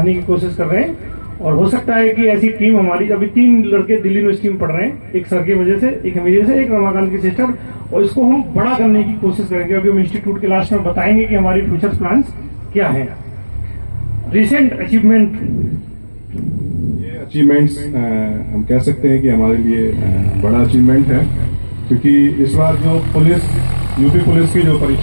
की कोशिश कर रहे हैं। और हो सकता है कि ऐसी टीम हमारी, अभी 3 लड़के दिल्ली यूनिवर्सिटी में पढ़ रहे हैं, एक सर की वजह से, एक मेरी वजह से, एक रमाकांत की सिस्टर, और इसको हम बड़ा करने की कोशिश करेंगे। अभी हम इंस्टीट्यूट के लास्ट में बताएंगे कि हमारी फ्यूचर प्लान्स क्या है। रिसेंट अचीवमेंट, ये अचीवमेंट्स हम कह सकते हैं कि हमारे लिए बड़ा अचीवमेंट है, क्योंकि इस बार जो यूपी पुलिस की जो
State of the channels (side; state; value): both; inverted; correlation -1.00